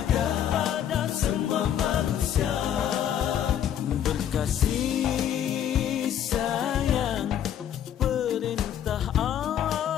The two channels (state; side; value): quieter; right; 10.1 dB